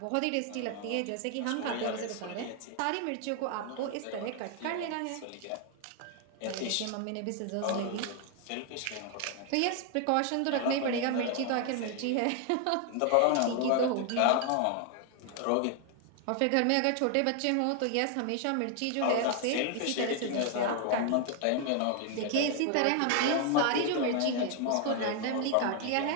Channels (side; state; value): both; different; correlation 0.00